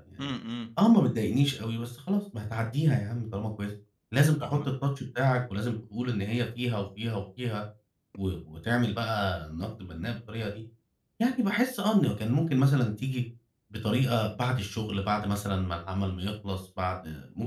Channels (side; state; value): both; identical; correlation 1.00